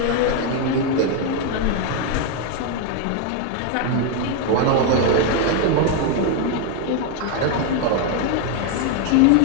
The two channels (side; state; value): both; different; correlation 0.01